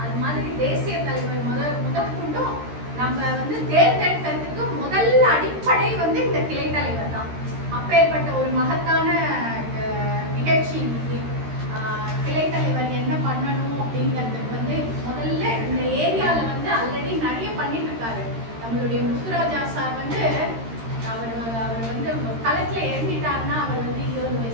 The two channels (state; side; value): late; left; 13 ms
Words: அது மாதிரி தேசிய தலைவர் முதற்கொண்டும் நம்ம வந்து தேர்ந்தெடுக்கிறதுக்கு முதல் அடிப்படை வந்து இந்த கிளை தலைவர் தான். அப்பேற்பட்ட ஒரு மகத்தான நிகழ்ச்சி இன்னைக்கு. கிளை தலைவர் என்ன பண்ணணும் அப்படிங்கிறதுக்கு வந்து முதல்ல இந்த ஏரியால வந்து ஆல்ரெடி நிறைய பண்ணிட்டு இருக்காரு. நம்மளுடைய முத்துராஜா சார் வந்து அவர் வந்து களத்துல இறங்கிட்டாருன்னா, அவர் வந்து 20